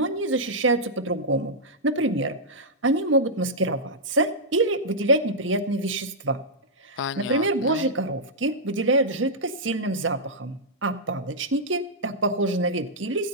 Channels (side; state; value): both; normal; correlation -0.09